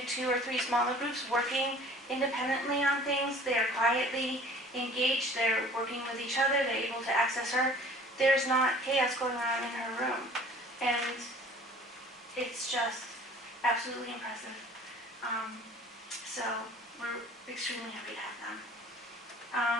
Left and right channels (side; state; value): both; normal; correlation 0.49